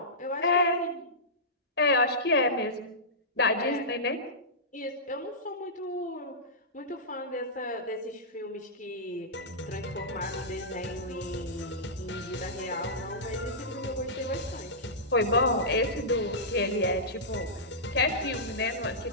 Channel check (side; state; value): both; normal; correlation -0.16